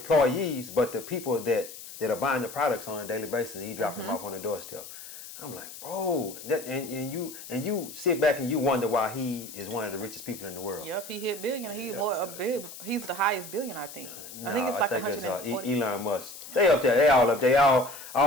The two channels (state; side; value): noise; left; hiss, 13 dB below the sound